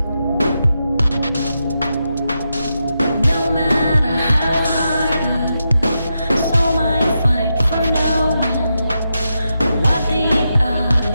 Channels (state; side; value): inverted; both; correlation -0.86